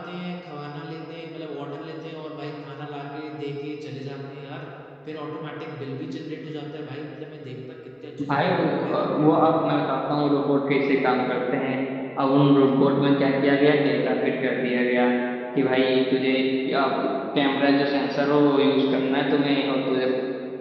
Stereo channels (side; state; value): both; identical; correlation 1.00